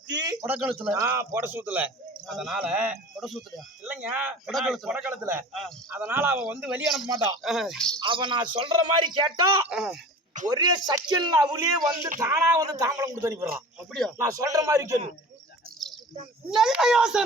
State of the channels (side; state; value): both; normal; correlation 0.39